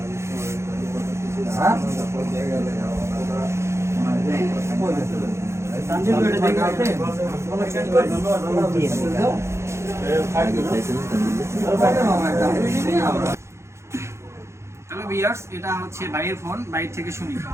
হ্যালো ভিউয়ার্স, এটা হচ্ছে ভাইয়ের ফোন, বাইরে থেকে শুনি।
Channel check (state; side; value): late; left; 0.13 ms